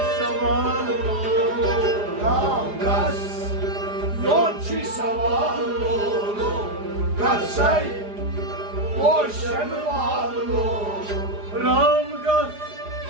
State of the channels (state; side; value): late; left; 4.9 ms